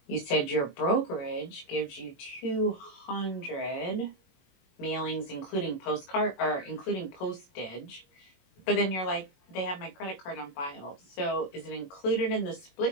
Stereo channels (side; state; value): right; late; 21 ms